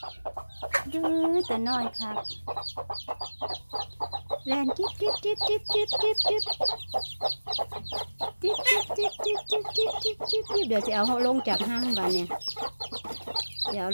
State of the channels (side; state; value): both; inverted; correlation -1.00